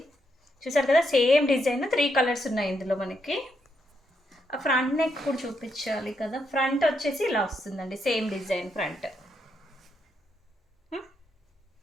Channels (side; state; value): both; normal; correlation 0.79